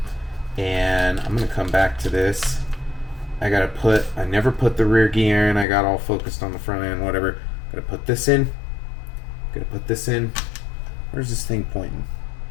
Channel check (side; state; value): right; drops out; at 5.7 s